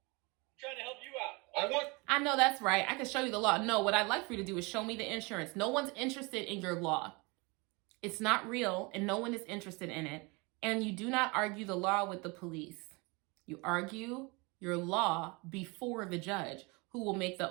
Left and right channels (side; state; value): left; quieter; 27.7 dB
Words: I'm trying to help you out. I know that's right. I can show you the law. No, what I'd like for you to do is show me the insurance. No one's interested in your law. It's not real, and no one is interested in it. And you do not argue the law with the police. You argue your law before the judge, who will make the